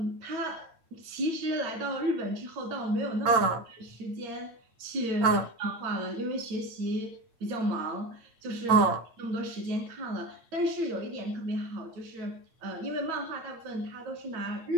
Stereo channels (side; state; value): left; late; 8.9 ms